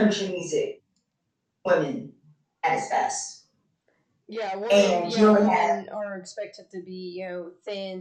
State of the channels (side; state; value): both; identical; correlation 1.00